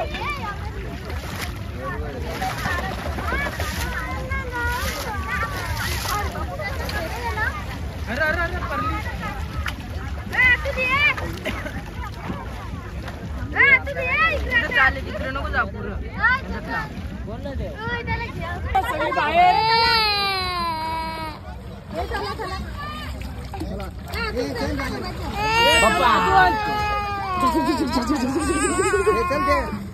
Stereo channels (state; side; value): identical; both; correlation 1.00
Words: तिकडे नको जा पुढं